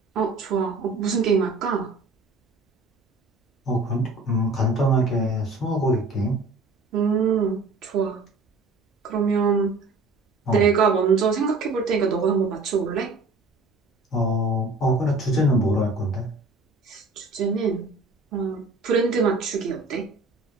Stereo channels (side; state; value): left; quieter; 3.2 dB